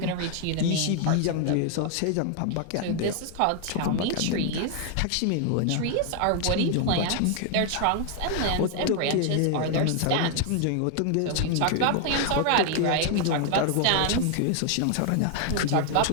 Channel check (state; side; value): different; both; correlation 0.00